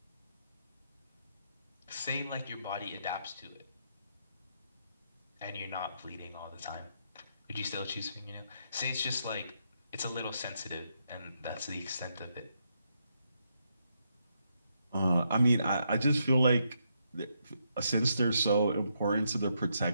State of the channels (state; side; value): inverted; both; correlation -0.79